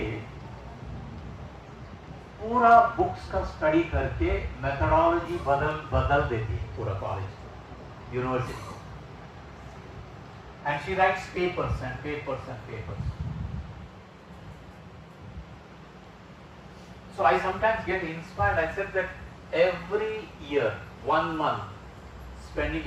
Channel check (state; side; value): identical; both; correlation 1.00